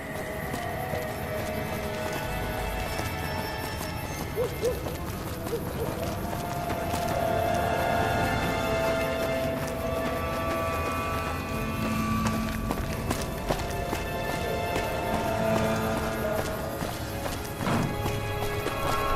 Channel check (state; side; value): identical; both; correlation 1.00